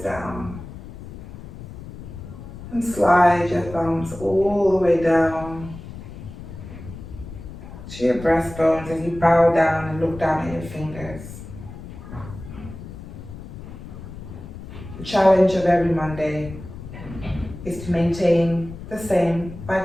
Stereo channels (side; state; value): left; noise; rumble, 13 dB below the sound